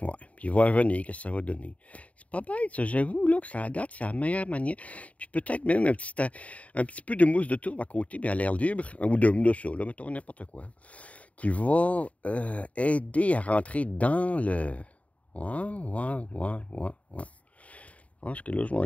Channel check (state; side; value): late; right; 0.067 ms